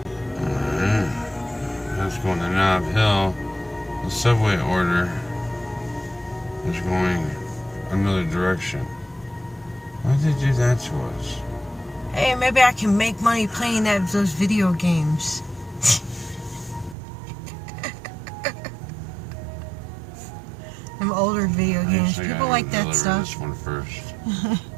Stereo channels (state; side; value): drops out; left; at 16.9 s